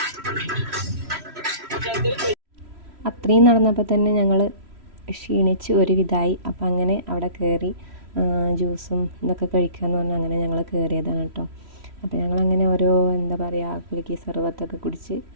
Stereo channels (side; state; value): left; late; 3.1 ms